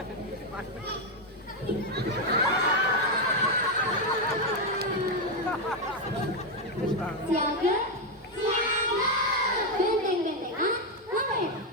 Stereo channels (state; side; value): normal; both; correlation 0.04